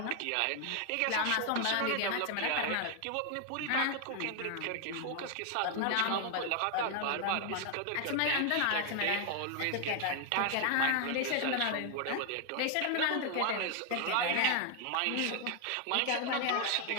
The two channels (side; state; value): both; different; correlation 0.00